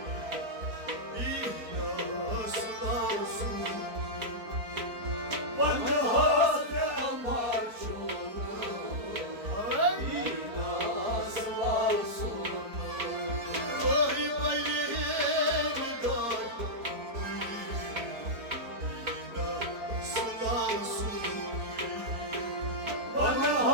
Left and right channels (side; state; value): left; late; 4.4 ms